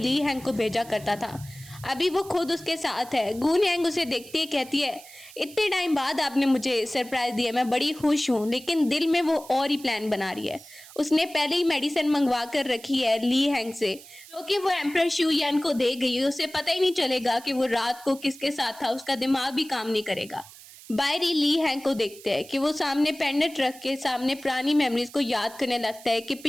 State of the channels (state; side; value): noise; right; hiss, 19 dB below the sound